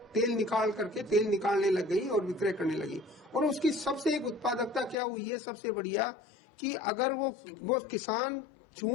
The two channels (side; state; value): right; drops out; at 5.0 s